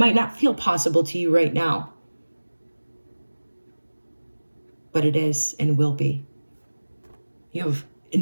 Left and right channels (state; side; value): inverted; both; correlation -1.00